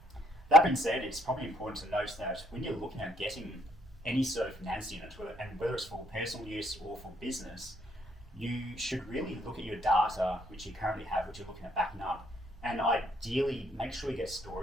That being said, it's probably important to note that when you're looking at getting any sort of NAS unit, whether it's for personal use or for business, you should really look at your data, which you currently have, which you're looking at backing up, and ideally make sure you get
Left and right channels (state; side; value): noise; right; rumble, 21 dB below the sound